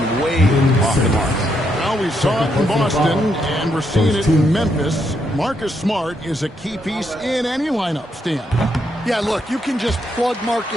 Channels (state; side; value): normal; both; correlation 0.78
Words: way off the mark. Well, we saw it in Boston, and we're seeing it in Memphis. Marcus Smart is a key piece in any lineup, Stan. Yeah, look, you can just plug